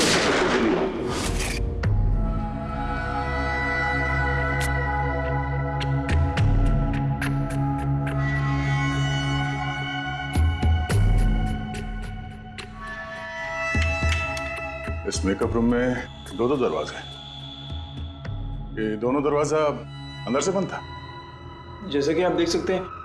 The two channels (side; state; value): both; identical; correlation 1.00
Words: से गोली मारी। इस मेकअप रूम में दो दरवाजे हैं। ये दोनों दरवाजा अंदर से बंद था। जैसे कि आप देख सकते हैं